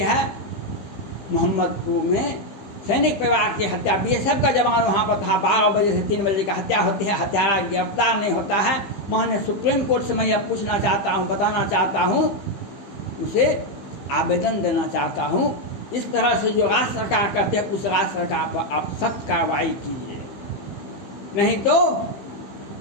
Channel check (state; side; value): late; right; 15 ms